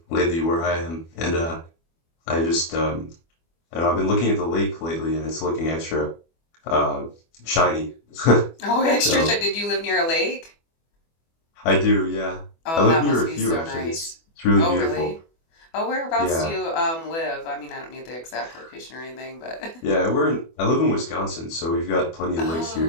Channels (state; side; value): late; right; 24 ms